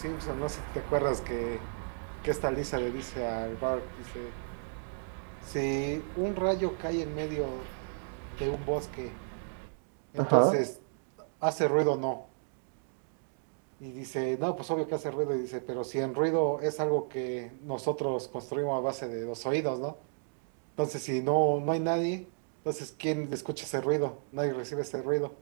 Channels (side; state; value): left; silent; digital silence